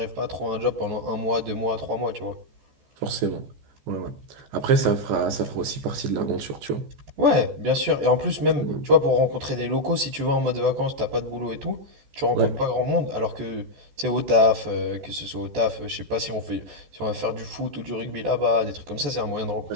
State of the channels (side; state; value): left; late; 14 ms